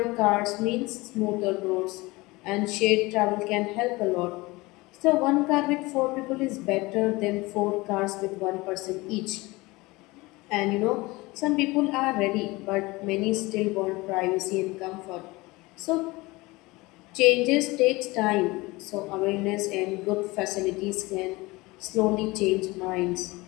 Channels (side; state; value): right; quieter; 22.2 dB